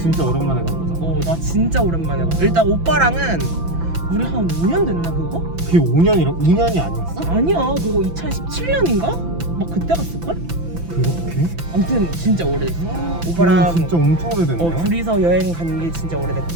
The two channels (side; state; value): left; late; 5.9 ms